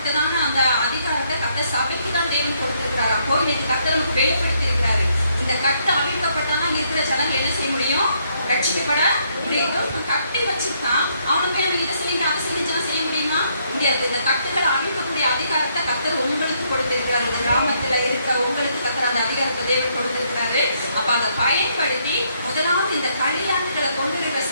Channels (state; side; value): inverted; both; correlation -0.72